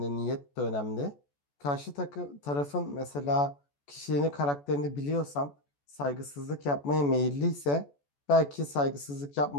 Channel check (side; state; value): right; late; 14 ms